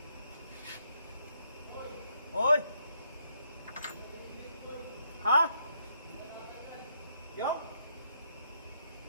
Oy! Ha? Yo?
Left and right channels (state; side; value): inverted; both; correlation -0.74